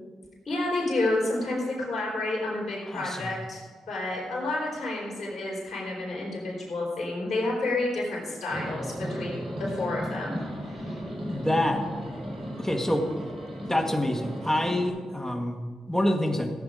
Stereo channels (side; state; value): both; normal; correlation 0.87